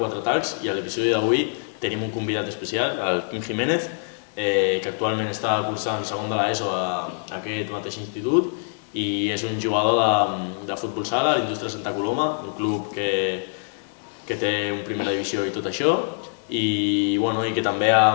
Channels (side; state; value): right; silent; 62 dB below the other